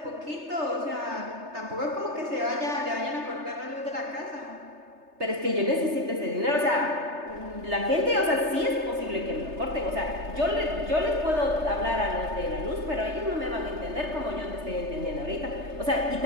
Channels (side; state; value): left; late; 3.3 ms